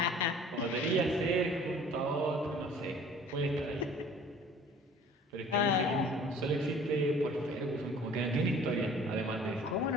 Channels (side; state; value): both; normal; correlation 0.50